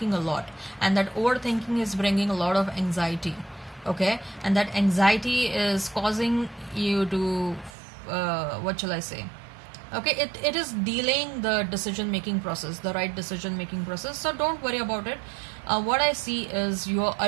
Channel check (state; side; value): drops out; left; at 7.7 s